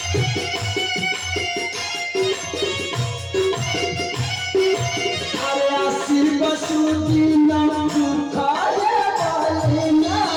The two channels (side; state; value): both; identical; correlation 1.00